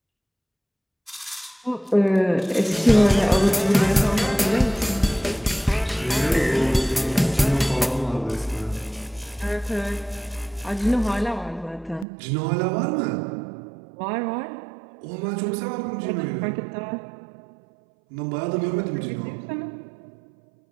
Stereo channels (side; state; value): left; drops out; at 12.1 s